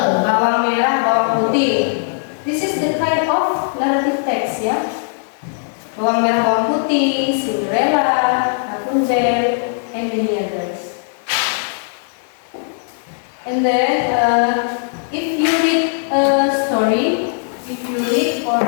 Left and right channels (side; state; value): right; silent; digital silence